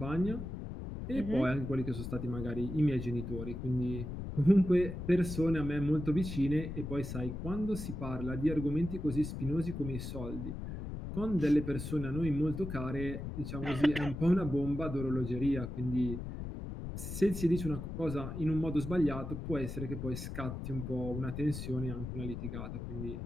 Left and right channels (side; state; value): left; noise; rumble, 6 dB below the sound